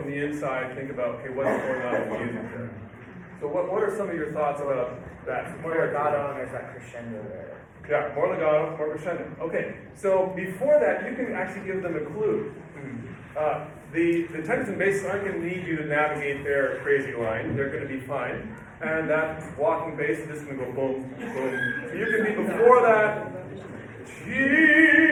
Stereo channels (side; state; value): both; identical; correlation 1.00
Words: the inside, think about, okay, what's going on in the music there? So what are some of your thoughts about that? More legato, and there's that crescendo there. Yeah, more legato, more crescendo. Okay, so before that, you can actually give them a clue. The tenors and basses aren't going to need you to navigate their crazy line. They're going to be fine. And that walking bass is just going to go boom, boom. So you can be before that,